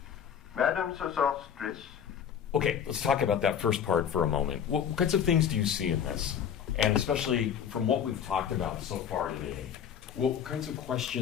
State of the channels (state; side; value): quieter; right; 8.4 dB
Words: Madam Sosostris. Okay, let's talk about that first part for a moment. What kinds of things do you see in this? And especially from what we've talked about so far today, what kinds of